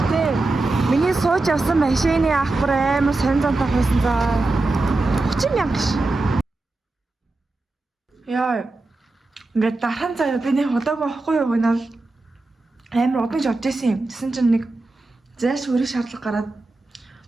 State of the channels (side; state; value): left; quieter; 3.1 dB